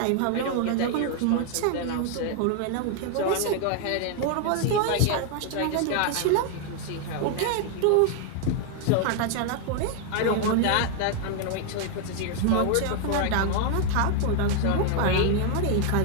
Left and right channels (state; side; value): different; both; correlation 0.00